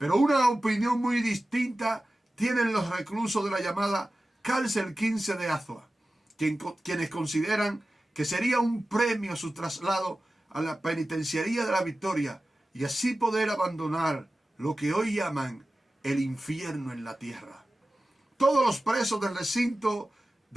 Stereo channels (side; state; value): both; normal; correlation 0.95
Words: una opinión muy distinta tienen los reclusos de la llamada Cárcel 15 de Azua, quienes consideran que sería un premio su traslado a la penitenciaría de la Victoria y así poder abandonar lo que hoy llaman el infierno en la tierra. Todos los presos del recinto